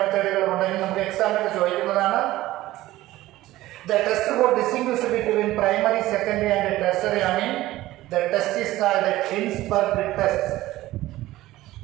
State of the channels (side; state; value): left; quieter; 16.3 dB